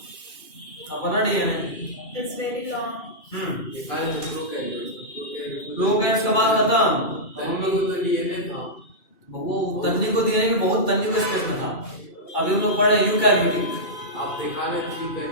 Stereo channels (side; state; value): right; late; 2.6 ms